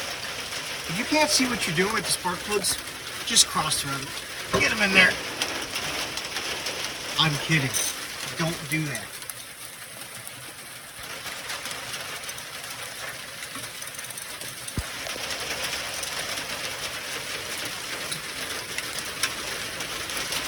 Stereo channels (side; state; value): both; identical; correlation 1.00